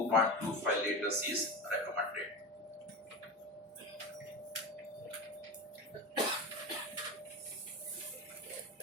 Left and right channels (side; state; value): both; normal; correlation 0.24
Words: liters is recommended.